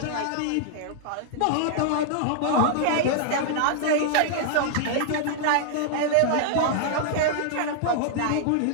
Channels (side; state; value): both; different; correlation -0.01